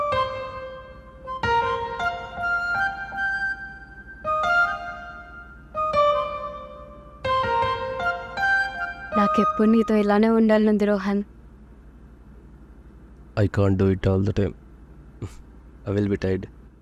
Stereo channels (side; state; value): both; identical; correlation 1.00